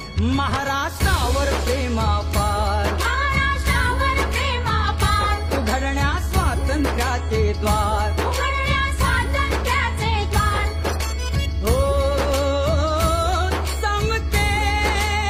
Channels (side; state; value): both; identical; correlation 1.00